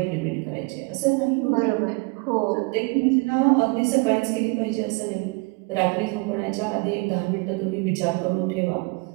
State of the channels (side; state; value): left; quieter; 28.9 dB